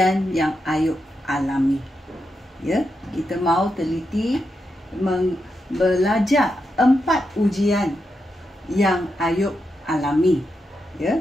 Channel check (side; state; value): both; normal; correlation 0.85